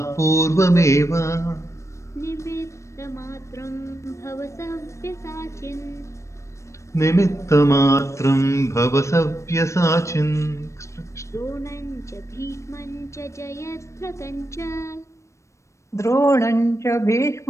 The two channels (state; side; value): late; right; 0.14 ms